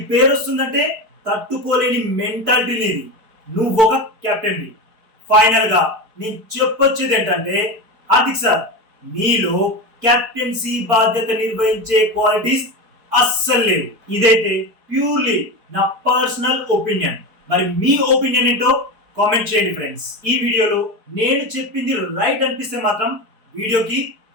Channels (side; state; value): left; late; 4.5 ms